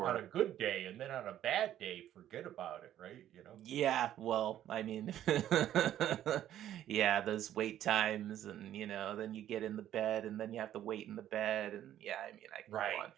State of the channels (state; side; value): quieter; left; 11.7 dB